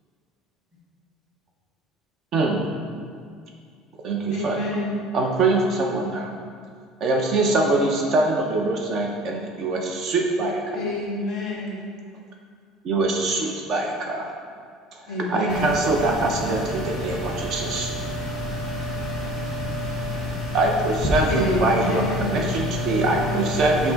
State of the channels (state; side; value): normal; both; correlation 0.45